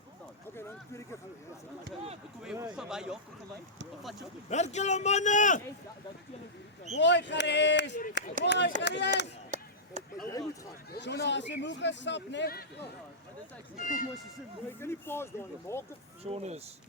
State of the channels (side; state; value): both; normal; correlation -0.14